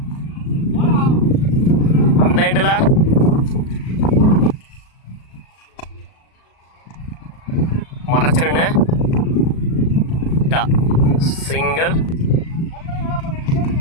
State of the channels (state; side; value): late; right; 37 ms